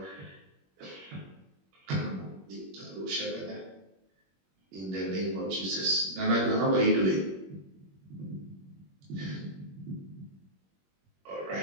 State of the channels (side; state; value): left; late; 21 ms